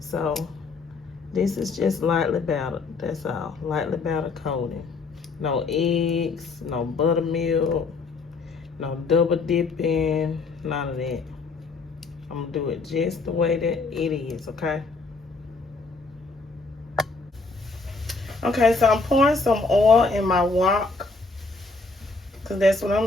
this is just lightly battered, that's all. Lightly battered coating. No eggs, no buttermilk, no double dipping, none of that. I'm gonna do it just the way that it is, okay? Okay, so I'm pouring some oil in my wok, because that's what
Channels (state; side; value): quieter; right; 3.9 dB